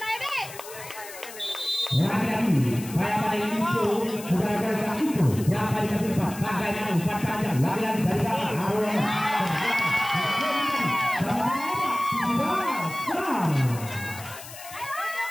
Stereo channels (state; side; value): noise; left; hiss, 14 dB below the sound